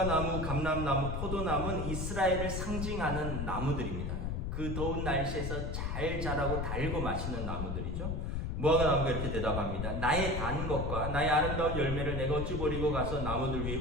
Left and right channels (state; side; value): noise; left; rumble, 2 dB below the sound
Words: 나무, 감람나무, 포도나무는 이스라엘을 상징하는 나무들입니다. 그 더운 날씨에서 잘 자라고 달고 맛있는 나무들이죠. 무화과 나무가 이렇게 대답합니다. 나의 단 것과 나의 아름다운 열매를 내가 어찌 버리고 가서 나무들 위에